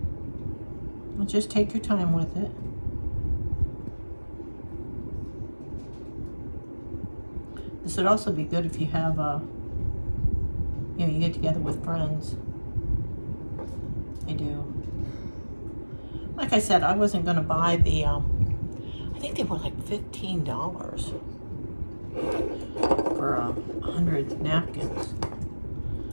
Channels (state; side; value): inverted; both; correlation -1.00